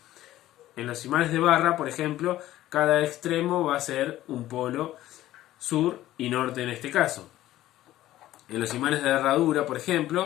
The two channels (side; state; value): right; quieter; 14.5 dB